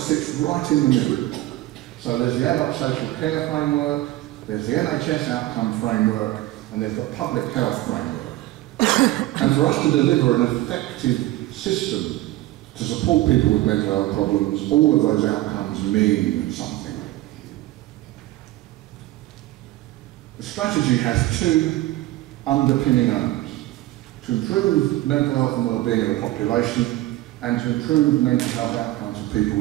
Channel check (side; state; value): left; quieter; 16.7 dB